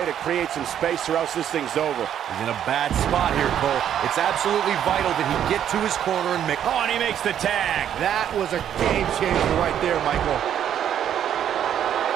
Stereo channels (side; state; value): left; quieter; 9.8 dB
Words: to create some space or else this thing's over. He's in a bad spot here, Cole. It's absolutely vital that he get to his corner and make... Oh, and he makes the tag. That was a game changer right there, Michael.